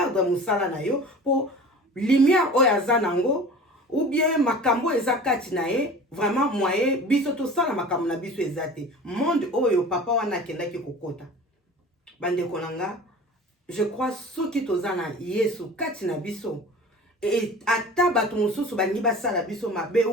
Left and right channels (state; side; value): normal; both; correlation 0.40